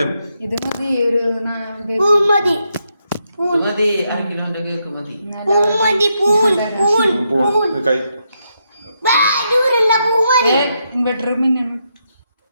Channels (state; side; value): inverted; both; correlation -0.81